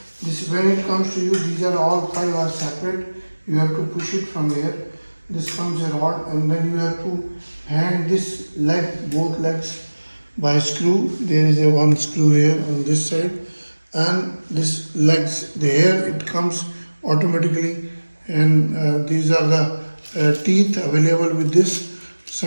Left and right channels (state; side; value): inverted; both; correlation -1.00